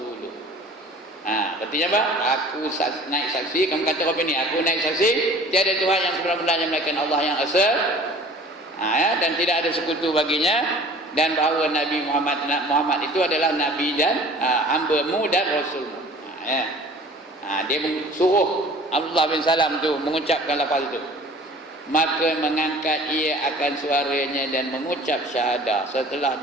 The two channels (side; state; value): both; normal; correlation 0.46